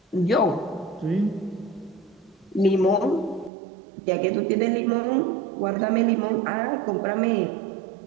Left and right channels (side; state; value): left; drops out; at 3.5 s